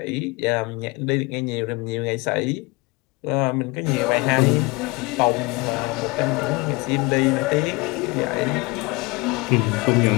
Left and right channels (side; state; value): right; quieter; 25.9 dB